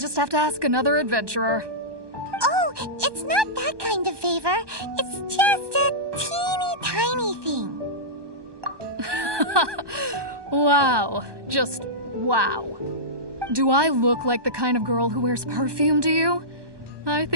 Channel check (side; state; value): left; late; 1.2 ms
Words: have to ask another adventurer. Oh, it's not that kind of favor. It's just a teeny tiny thing. Wow. Just wow. Do I look like the kind of girl who wears perfume to you? I